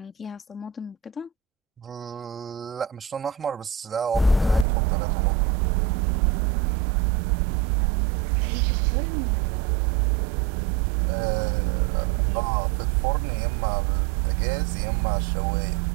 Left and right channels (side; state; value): left; drops out; at 4.7 s